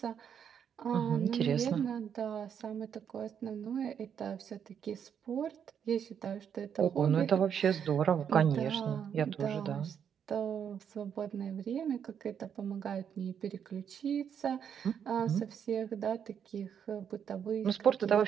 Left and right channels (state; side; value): quieter; left; 8.1 dB